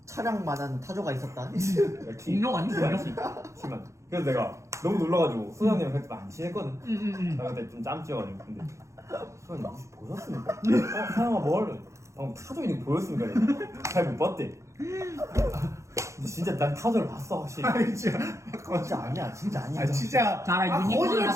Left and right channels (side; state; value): left; late; 0.14 ms